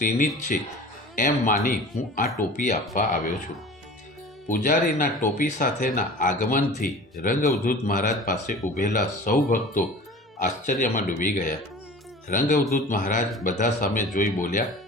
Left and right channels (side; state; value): both; normal; correlation 0.40